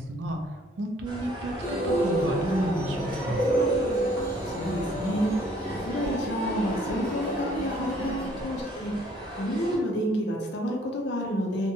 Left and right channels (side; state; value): both; normal; correlation 0.61